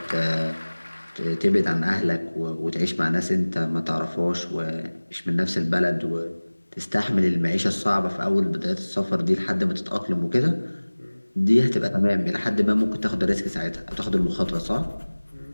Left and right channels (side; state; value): both; inverted; correlation -1.00